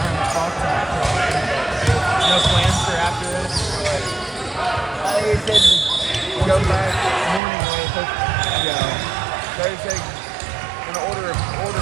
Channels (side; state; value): left; drops out; at 7.4 s